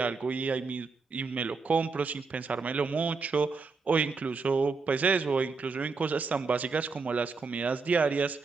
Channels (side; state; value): left; quieter; 4.4 dB